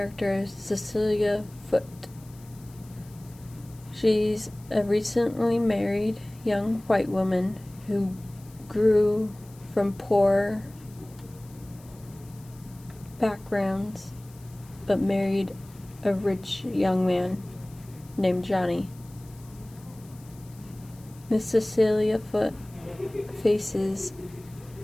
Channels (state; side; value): noise; left; hiss, 25 dB below the sound